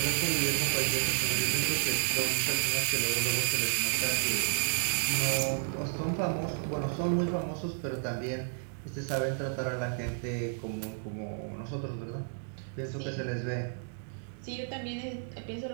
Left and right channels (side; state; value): left; silent; digital silence